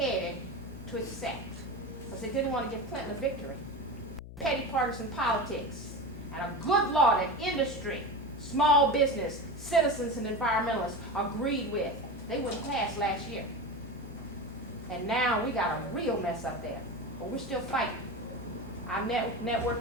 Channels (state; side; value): noise; left; hum, 13 dB below the sound